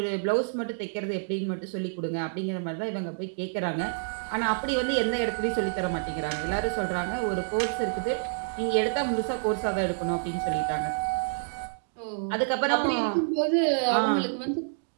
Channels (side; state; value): left; silent; digital silence